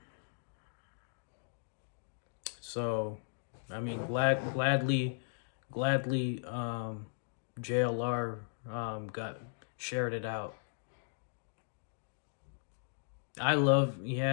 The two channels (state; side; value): silent; right; digital silence